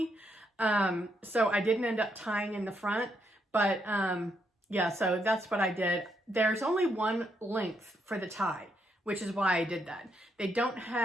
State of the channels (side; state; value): both; normal; correlation 0.77